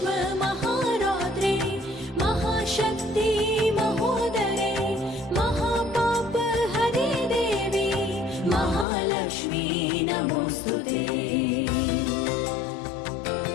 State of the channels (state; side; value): drops out; right; at 8.8 s